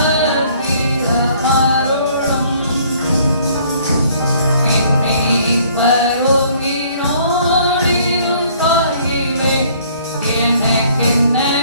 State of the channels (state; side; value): inverted; both; correlation -0.60